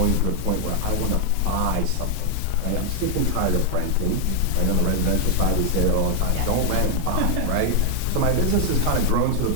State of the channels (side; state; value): both; different; correlation 0.00